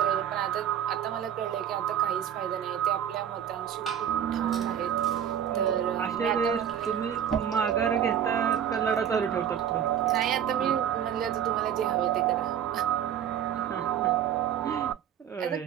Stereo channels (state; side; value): quieter; left; 9.4 dB